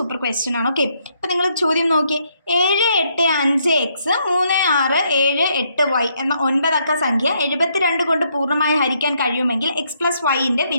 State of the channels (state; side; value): inverted; both; correlation -0.73